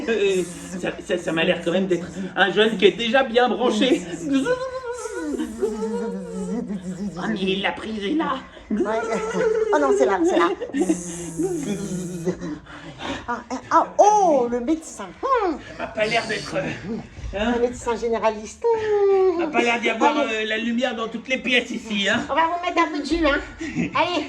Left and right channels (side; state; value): both; identical; correlation 1.00